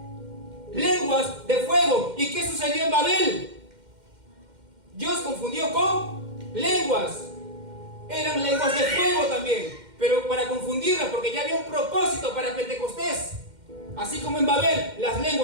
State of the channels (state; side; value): late; left; 2.1 ms